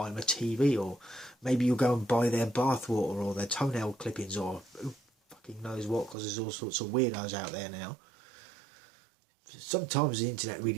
them a TV, or maybe you'll go and buy their bathwater or their toenail clippings, or who fucking knows what, because there's all sorts of weirdos out there now. Sometimes the internet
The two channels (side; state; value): left; drops out; at 6.2 s